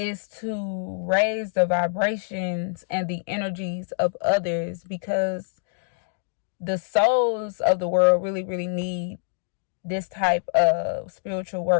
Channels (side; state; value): right; silent; digital silence